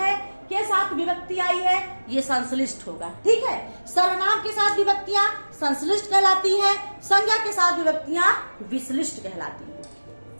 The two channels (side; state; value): both; inverted; correlation -1.00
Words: के साथ विभक्ति आई है, ये संश्लिष्ट होगा। ठीक है, सर्वनाम के साथ विभक्तियां संश्लिष्ट कहलाती है, संज्ञा के साथ विभक्तियां विश्लिष्ट कहलाती है।